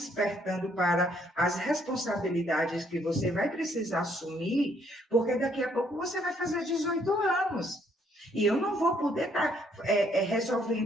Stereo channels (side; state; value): both; normal; correlation 0.68